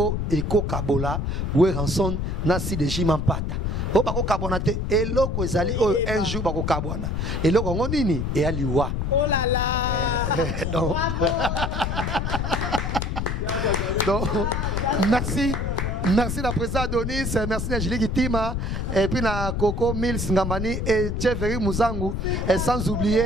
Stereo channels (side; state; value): left; noise; rumble, 1 dB below the sound